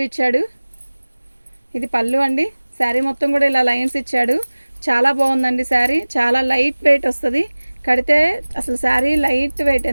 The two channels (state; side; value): inverted; both; correlation -1.00